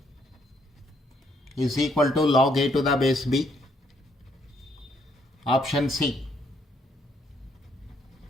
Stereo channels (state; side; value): normal; both; correlation 0.71